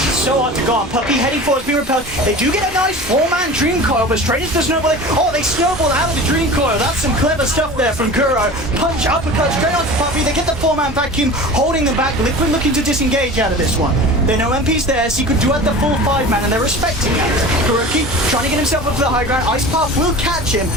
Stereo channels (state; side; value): normal; both; correlation 0.36